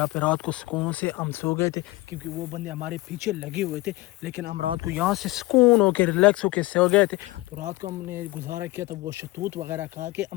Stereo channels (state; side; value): quieter; right; 20.1 dB